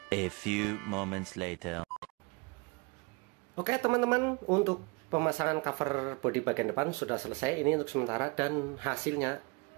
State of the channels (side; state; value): left; quieter; 28.9 dB